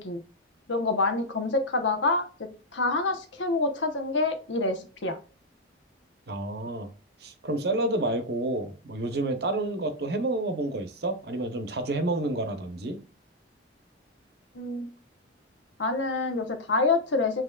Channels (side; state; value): both; normal; correlation -0.01